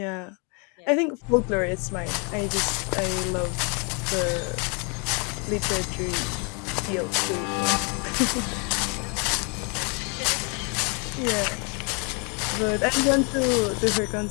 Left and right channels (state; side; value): quieter; right; 34.6 dB